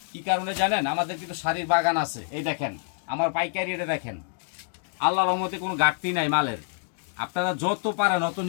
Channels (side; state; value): right; silent; digital silence